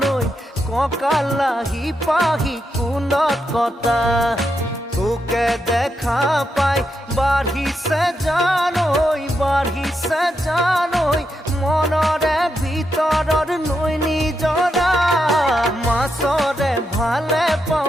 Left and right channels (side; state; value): both; normal; correlation 0.83